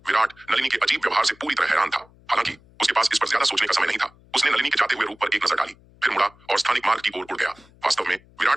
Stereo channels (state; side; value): noise; left; hum, 28 dB below the sound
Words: विराट नलिनी के अजीब व्यवहार से पूरी तरह हैरान था। हालांकि उसके पास इस पर ज्यादा सोचने का समय नहीं था। उसने नलिनी के जाते हुए रूप पर एक नजर डाली, फिर मुड़ा और स्थानिक मार्ग की ओर उड़ गया। वास्तव में